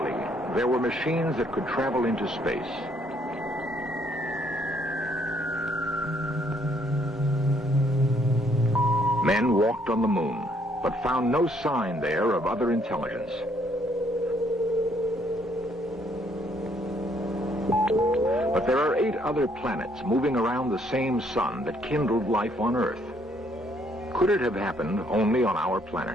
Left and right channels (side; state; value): both; normal; correlation 0.67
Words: there were machines that could travel into space. Men walked on the moon, but found no sign there of other intelligence. But there are 8 other planets moving around the same sun that kindled life on Earth. Could it have happened only on our